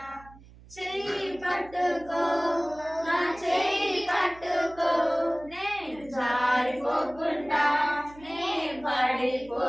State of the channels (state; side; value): noise; right; hum, 22 dB below the sound